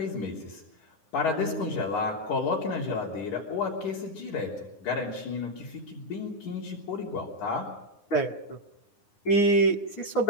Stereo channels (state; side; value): late; right; 9.7 ms